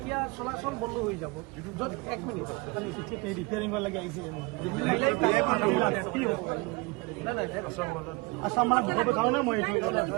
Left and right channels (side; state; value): left; quieter; 26.0 dB